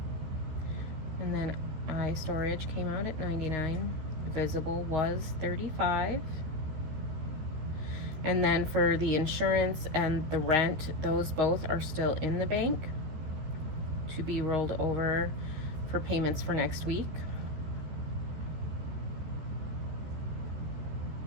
And then iStorage came out at $99. Visible was $35. And then for the insurance and the rent, those both are still in the bank to be rolled over for payments for next week.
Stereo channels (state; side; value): late; left; 13 ms